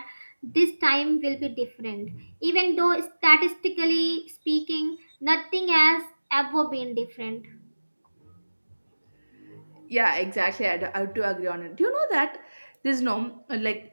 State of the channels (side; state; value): both; inverted; correlation -1.00